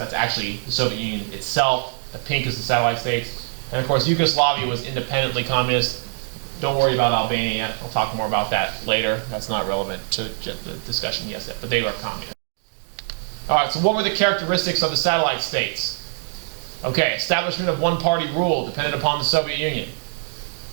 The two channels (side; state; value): left; silent; 59 dB below the other